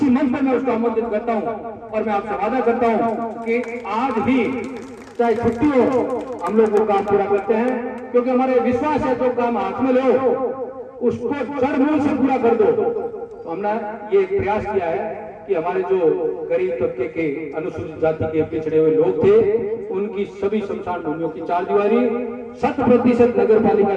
मंच पर मैं उसको आमंत्रित करता हूँ। और मैं आपसे वादा करता हूँ कि आज ही चाहे छुट्टी हो हम लोग वो काम पूरा करते हैं, क्योंकि हमारे विश्वास है जो काम हाथ में लो उसको जड़ मूल से पूरा कर दो। तो हमने ये प्रयास किया है कि हमारे जो गरीब तबके के अनुसूचित जाति के पिछड़े हुए लोग थे उनकी सभी शमशान भूमियों की 4 दीवारी 100% नगर पालिका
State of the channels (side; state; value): both; identical; correlation 1.00